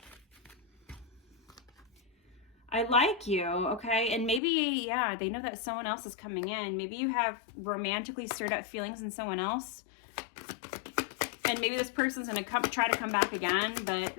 I like you, okay? And maybe, yeah, they know that someone else is coming in. Maybe you have romantically stirred up feelings in someone else. And maybe this person's going to try to come back again.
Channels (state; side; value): drops out; right; at 4.4 s